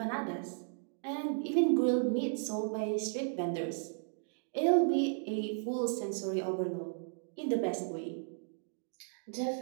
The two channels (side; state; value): left; silent; digital silence